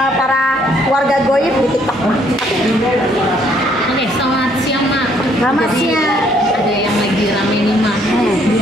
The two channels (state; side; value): normal; both; correlation 0.66